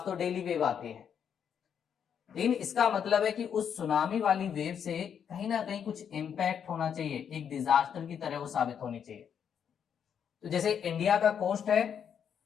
तो डेली वेव आती है, लेकिन इसका मतलब है कि उस सुनामी वाली वेव से कहीं ना कहीं कुछ इंपैक्ट होना चाहिए, एक डिजास्टर की तरह वो साबित होनी चाहिए। तो जैसे इंडिया का कोस्ट है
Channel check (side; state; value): right; quieter; 8.0 dB